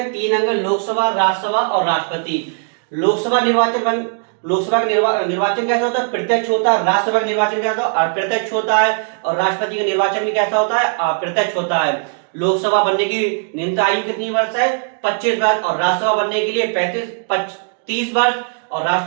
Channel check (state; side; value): silent; left; 67 dB below the other